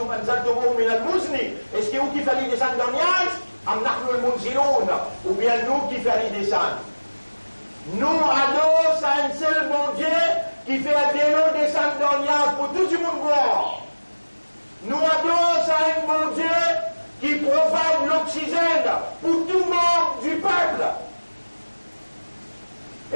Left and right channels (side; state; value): both; inverted; correlation -1.00